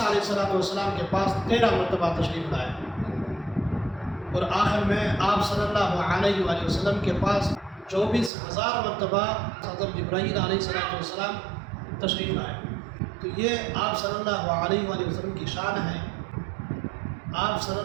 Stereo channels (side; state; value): left; drops out; at 8.3 s